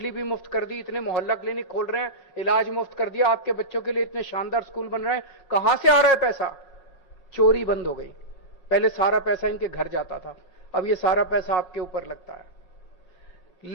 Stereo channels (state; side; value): late; right; 7.3 ms